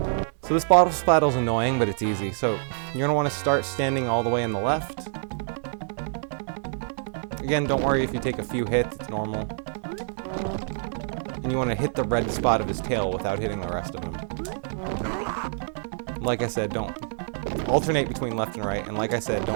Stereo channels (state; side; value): silent; left; digital silence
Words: So this boss battle is annoying, but it's easy. So you're gonna want to start standing all the way in the left. Again, don't worry if you take a few hits, it's normal. And you want to hit the red spot of his tail without hitting the rest of him. Like I said, don't alternate between left and right, and like I said,